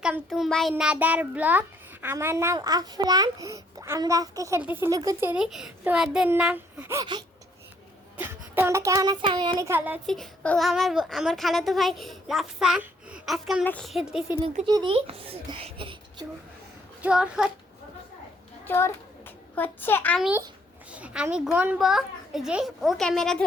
to my another blog. আমার নাম আফরান। আমরা আজকে খেলতেছি লুকোচুরি। তোমাদের নাম, তোমরা কেমন আছো? আমি অনেক ভালো আছি। ও আমার খালাতো ভাই রাফসান। আজকে আমরা খেলতেছি লুকোচুরি। চোর চোর হচ্ছে আমি গনবো যে ও ক্যামেরা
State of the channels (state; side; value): normal; both; correlation 0.67